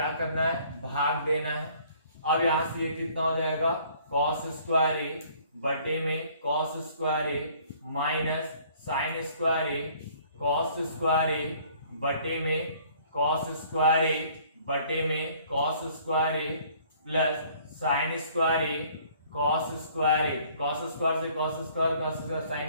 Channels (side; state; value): both; inverted; correlation -0.57